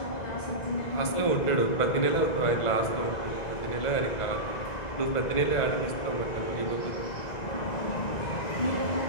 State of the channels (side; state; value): right; late; 2.0 ms